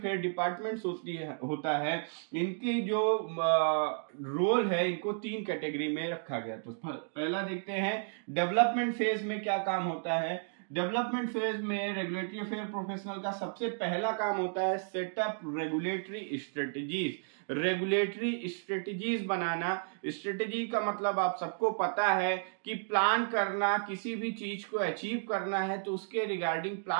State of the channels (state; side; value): silent; left; digital silence